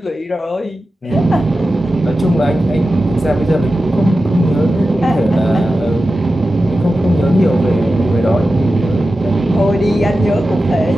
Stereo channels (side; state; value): both; normal; correlation 0.93